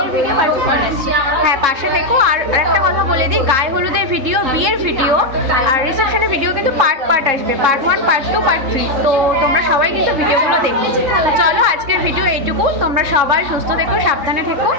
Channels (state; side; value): late; left; 3.7 ms